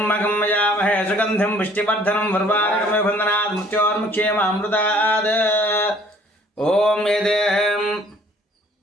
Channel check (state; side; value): normal; both; correlation 0.57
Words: यजामहे सुगन्धिं पुष्टिवर्धनं वर्वाणकमिव बन्धनात् मृत्योर्मुक्षेमामृतात् ॐ